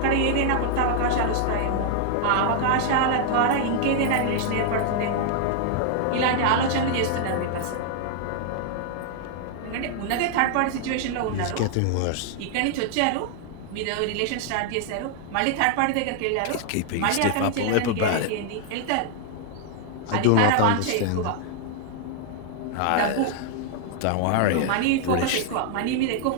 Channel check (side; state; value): both; different; correlation 0.00